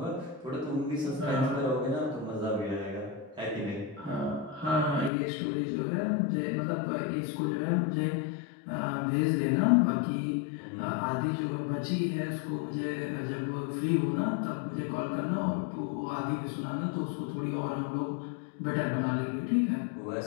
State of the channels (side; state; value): right; drops out; at 5.1 s